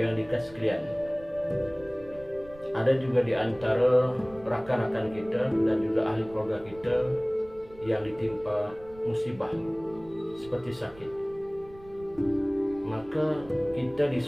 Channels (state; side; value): noise; right; rumble, 21 dB below the sound